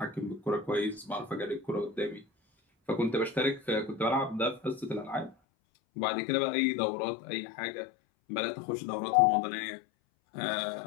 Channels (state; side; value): drops out; right; at 5.4 s